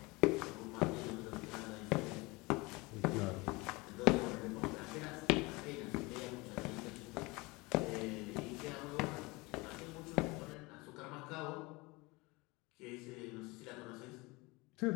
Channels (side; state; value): right; quieter; 24.4 dB